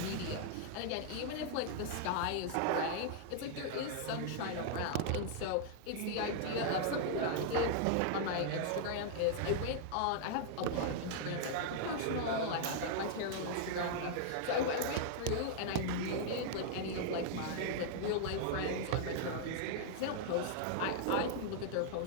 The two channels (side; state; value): both; different; correlation -0.01